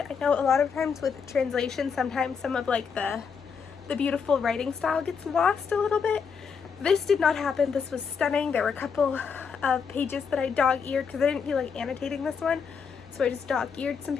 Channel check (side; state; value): right; quieter; 6.0 dB